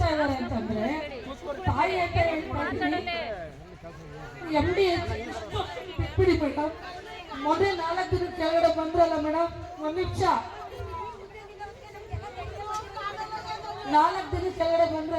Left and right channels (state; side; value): identical; both; correlation 1.00